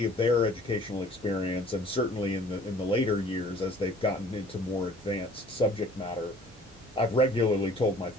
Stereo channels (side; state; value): both; normal; correlation 0.51